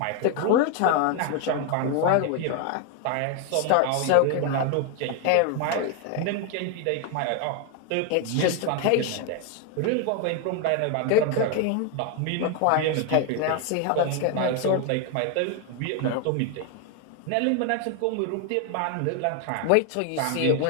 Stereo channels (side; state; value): both; different; correlation 0.01